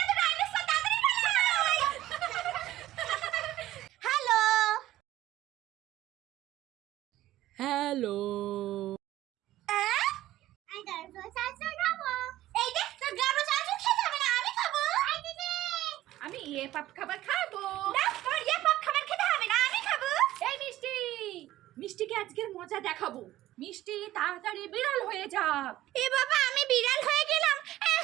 তো ডাইনোসর তাড়াতাড়ি পালাই হ্যালো হ্যালো আই ডাইনোসর চাচু খাবো এই দেখ তো গাবো চাচু খেতে হবে না আমি খাবো আই দিদি আমি ইয়ে পাপ খাবার খাবো না তোর ইয়ে পাপ খাবার খেতে হবে না আমি খাবো এই মিষ্টি মিষ্টিকে আজকের মজা দেখাবো মিষ্টি তাড়াতাড়ি বিড়াল হয়ে যা এ বাবা আমি বিড়াল হয়ে গেলাম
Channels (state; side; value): quieter; left; 14.9 dB